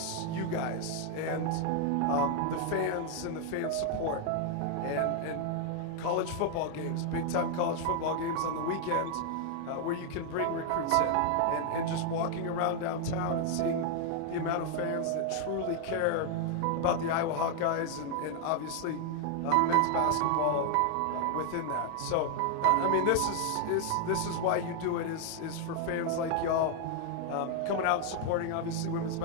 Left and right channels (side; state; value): both; different; correlation 0.00